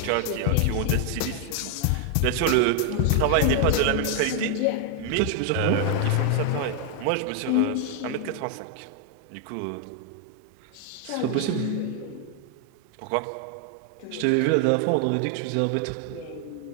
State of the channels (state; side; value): different; both; correlation 0.00